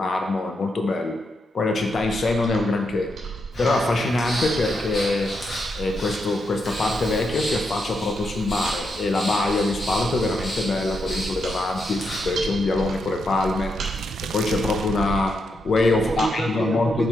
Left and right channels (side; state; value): both; normal; correlation 0.82